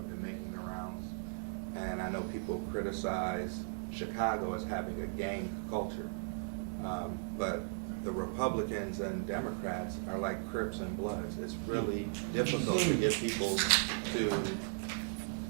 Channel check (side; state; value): left; silent; 53 dB below the other